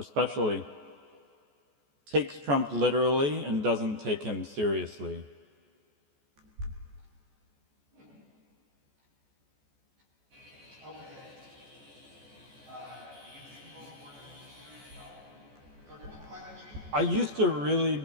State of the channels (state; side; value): late; left; 14 ms